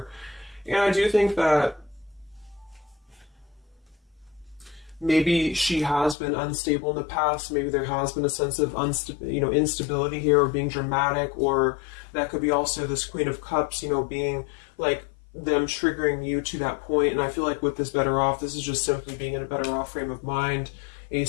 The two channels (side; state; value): right; drops out; at 6.2 s